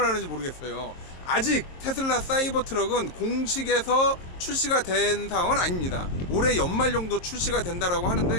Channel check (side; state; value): right; late; 22 ms